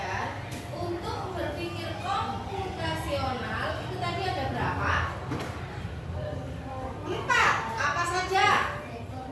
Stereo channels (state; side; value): identical; both; correlation 1.00